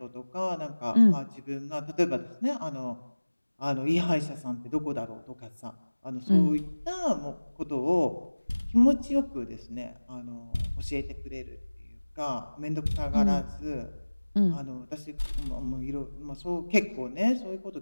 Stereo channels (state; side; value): inverted; both; correlation -1.00